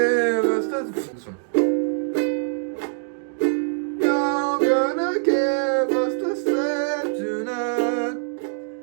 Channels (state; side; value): silent; left; digital silence